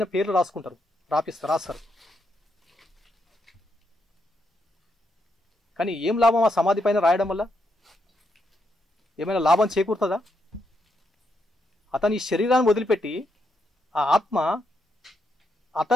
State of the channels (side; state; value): both; normal; correlation 0.80